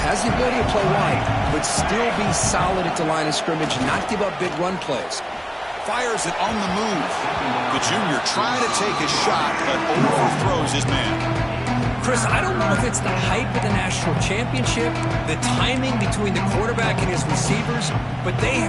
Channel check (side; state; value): both; identical; correlation 1.00